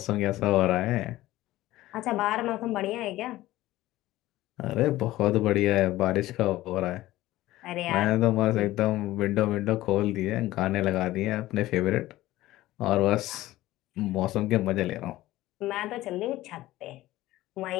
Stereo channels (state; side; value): quieter; right; 16.3 dB